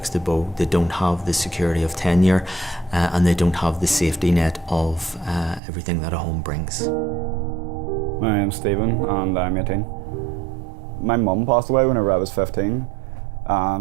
abode, they don't have the security of tenure, and they don't have the safety net of everything that a home brings. My name's Stephen and I'm 18. My mum passed away whenever I was 15,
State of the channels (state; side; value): drops out; left; at 5.6 s